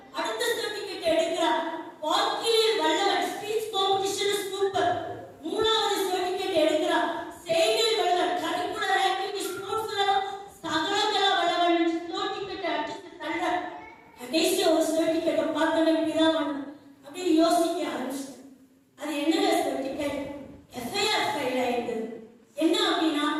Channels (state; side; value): identical; both; correlation 1.00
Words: அடுத்த ஸ்டோன் டிக்கெட் எடுக்கிறார். வாக்கிலில் வல்லவன், ஸ்பீச் காம்படிஷன் சூப்பர். 3வது ஸ்டோன் டிக்கெட் எடுக்கிறார். செய்தியில் வல்லவன், கரிக்குலர் ஆக்டிவிட்டி ஸ்போர்ட்ஸ்ல சகலகலா வல்லவன் ஸ்டோன் டிக்கெட் அடிச்சு தள்ள. கடைசி ஒரு ஸ்டோன் டிக்கெட்டை பார்த்தவன் பிதாவானவர் அப்படியே யோசிக்க ஆரம்பிச்சு, அது என்ன சர்டிபிகேட்? எஃப்ஐஆர் ஃபைல் ஆயிடுது. என்ன அப்படின்னா,